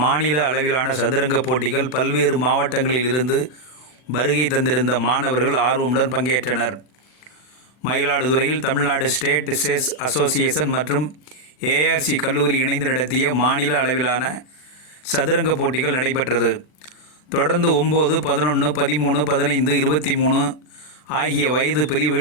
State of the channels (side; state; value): right; late; 39 ms